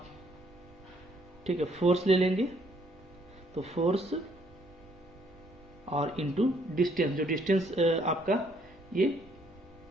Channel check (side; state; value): both; normal; correlation 0.67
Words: ठीक है, फोर्स ले लेंगे, तो फोर्स और इनटू डिस्टेंस, जो डिस्टेंस आपका ये